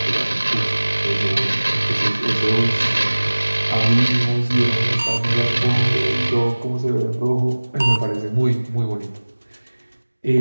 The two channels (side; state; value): both; inverted; correlation -1.00